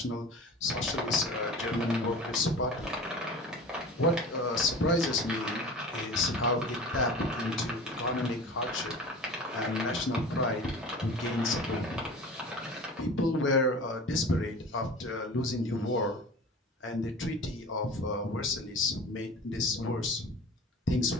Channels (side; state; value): both; normal; correlation 0.37